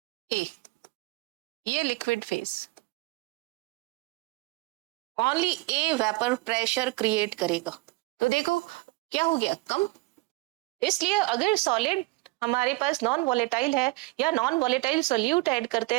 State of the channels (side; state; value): left; quieter; 22.2 dB